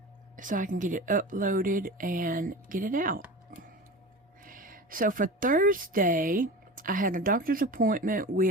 so I can get it uploaded and get it out. So for Thursday, I had a doctor's appointment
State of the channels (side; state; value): both; normal; correlation 0.31